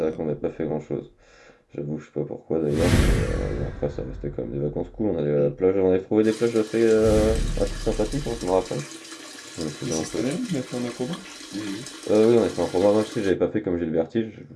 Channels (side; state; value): both; identical; correlation 1.00